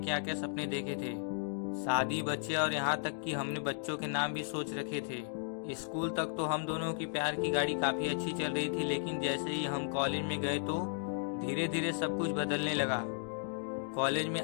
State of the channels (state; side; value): silent; right; digital silence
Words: क्या सपने देखे थे, शादी, बच्चे और यहाँ तक कि हमने बच्चों के नाम भी सोच रखे थे। स्कूल तक तो हम दोनों की प्यार की गाड़ी काफी अच्छी चल रही थी, लेकिन जैसे ही हम कॉलेज में गए तो धीरे धीरे सब कुछ बदलने लगा। कॉलेज में